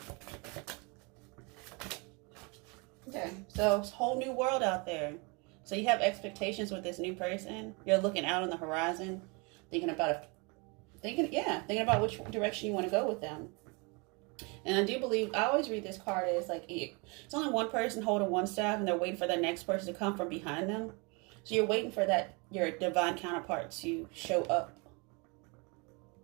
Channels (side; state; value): left; quieter; 30.3 dB